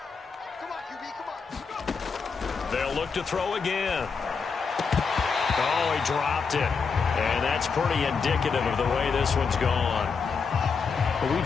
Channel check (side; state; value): right; quieter; 5.4 dB